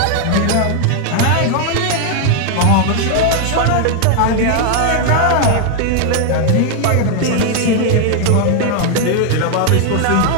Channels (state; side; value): different; both; correlation 0.00